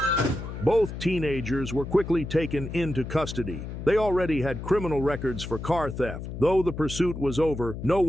Both teenagers were quickly taken into custody. They already had criminal records for car theft. Though the pursuit was over, no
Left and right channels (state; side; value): noise; left; hum, 8 dB below the sound